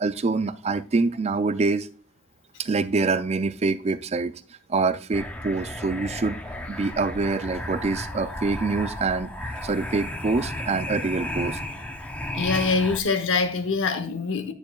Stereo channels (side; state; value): both; normal; correlation 0.38